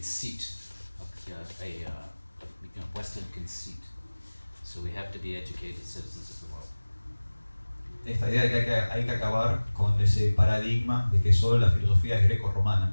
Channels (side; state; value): both; inverted; correlation -1.00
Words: Western conceit. So we have to be educated citizens of the world. Esta idea de que hay que acabar con ese paradigma de que solo la filosofía es